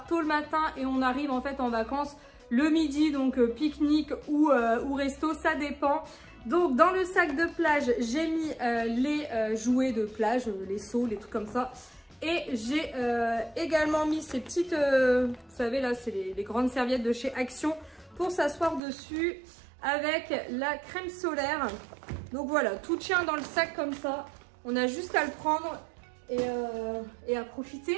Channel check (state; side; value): drops out; left; at 18.8 s